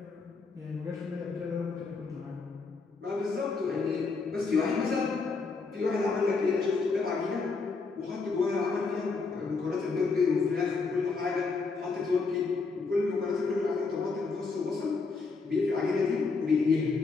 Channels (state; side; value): quieter; right; 4.4 dB